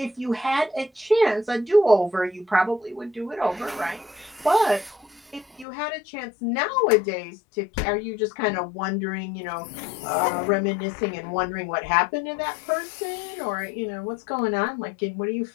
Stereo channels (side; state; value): right; drops out; at 5.7 s